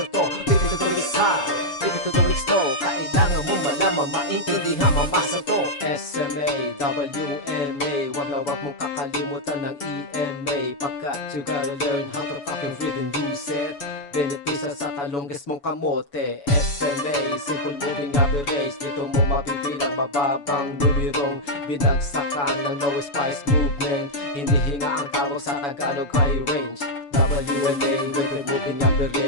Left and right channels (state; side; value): late; right; 7.0 ms